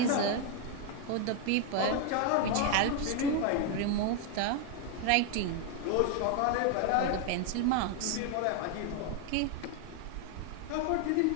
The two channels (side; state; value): both; different; correlation 0.01